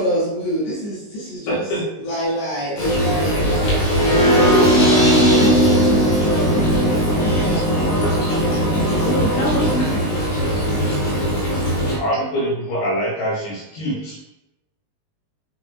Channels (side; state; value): right; late; 19 ms